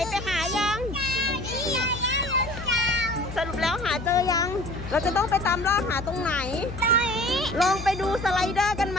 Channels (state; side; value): noise; left; hum, 10 dB below the sound